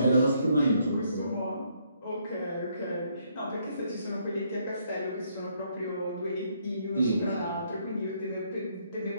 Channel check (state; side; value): inverted; both; correlation -0.71